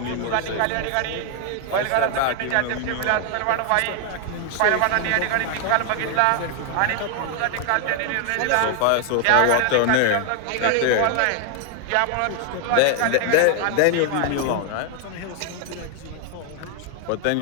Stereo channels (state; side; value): different; both; correlation 0.00